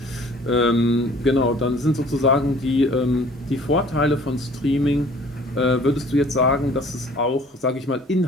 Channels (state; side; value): normal; both; correlation 0.52